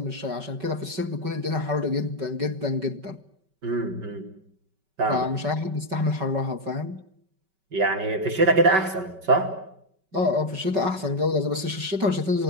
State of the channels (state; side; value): late; left; 5.2 ms